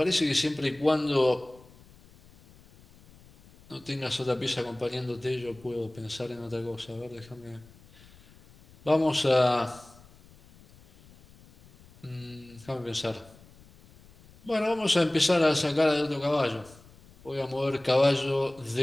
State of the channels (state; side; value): noise; left; rumble, 25 dB below the sound